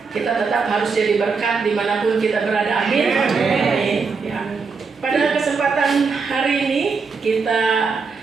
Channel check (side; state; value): left; quieter; 5.0 dB